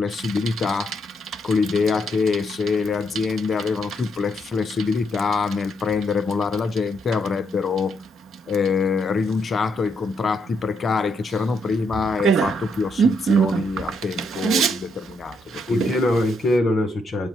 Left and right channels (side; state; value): both; normal; correlation 0.77